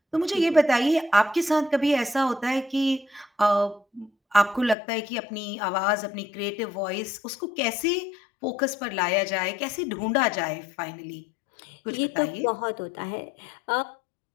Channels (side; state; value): right; drops out; at 4.8 s